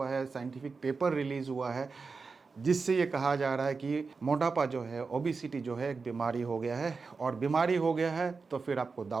है, साइंटिफिक पेपर रिलीज़ हुआ है, जिससे ये कहा जा रहा है कि मोटापा जो है, ओबेसिटी जो है एक बीमारी हो गया है। और बीमारी हो गया है तो फिर आपको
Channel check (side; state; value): left; quieter; 4.6 dB